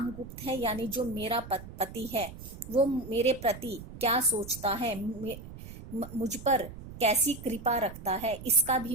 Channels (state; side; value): noise; right; rumble, 14 dB below the sound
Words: है, यानी जो मेरा पति है, वो मेरे प्रति क्या सोचता है, मुझ पर कैसी कृपा रखता है, इसका